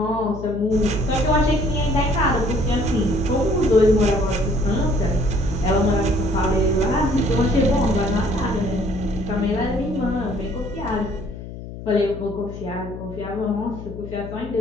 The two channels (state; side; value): noise; left; hum, 11 dB below the sound